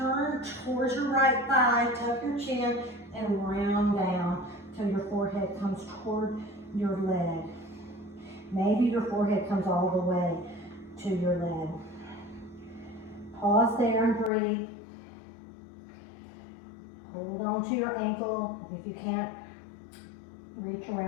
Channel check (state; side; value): drops out; right; at 14.3 s